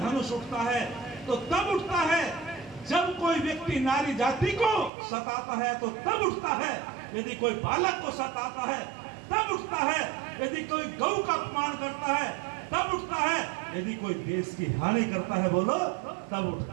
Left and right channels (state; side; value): drops out; left; at 4.9 s